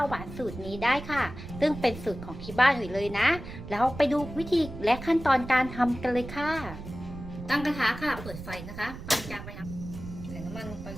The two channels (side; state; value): right; noise; rumble, 11 dB below the sound